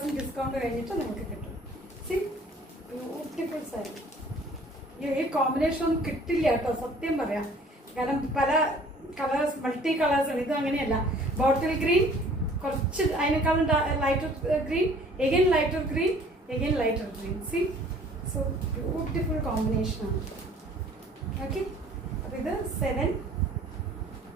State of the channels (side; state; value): both; normal; correlation 0.53